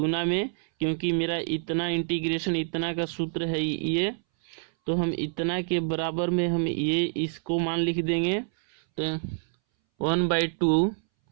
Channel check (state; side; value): silent; left; 60 dB below the other